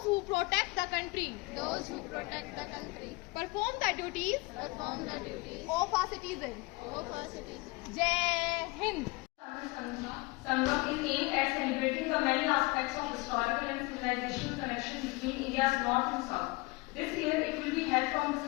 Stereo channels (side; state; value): right; quieter; 24.1 dB